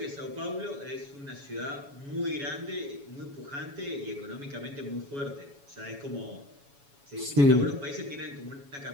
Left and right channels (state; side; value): late; left; 7.1 ms